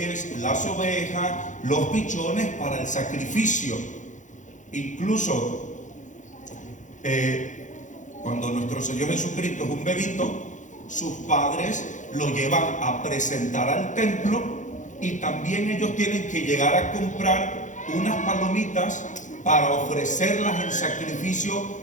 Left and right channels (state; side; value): late; right; 0.36 ms